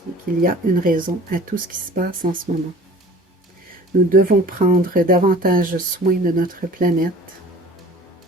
Et qu'il y a une raison à tout ce qui se passe en ce moment. Nous devons prendre davantage soin de notre planète,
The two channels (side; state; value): both; normal; correlation 0.45